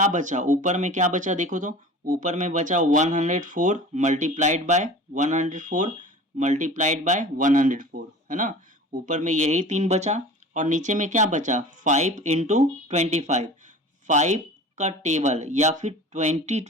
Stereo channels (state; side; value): normal; both; correlation 0.39